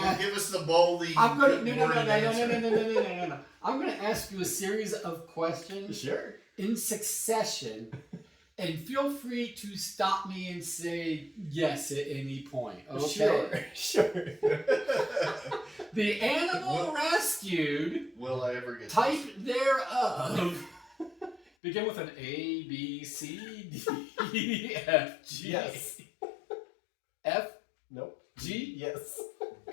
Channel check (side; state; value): right; drops out; at 21.5 s